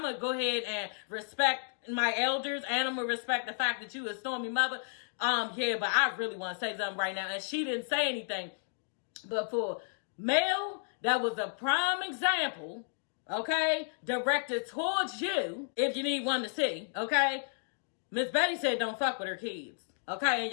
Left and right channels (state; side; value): silent; right; digital silence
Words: gonna go ahead and respect my elders, and I'm gonna respect the fact that you a Stormy mother. Yeah, but I really want to say something right now. And she didn't say anything. But for Mel, that was a prime example, okay, directed towards you, if you need one to see, okay? Miss Betty said don't fuck with her kids, okay? And